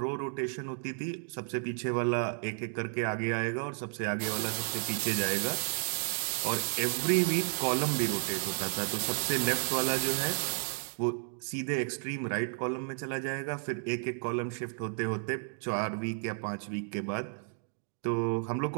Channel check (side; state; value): left; silent; 56 dB below the other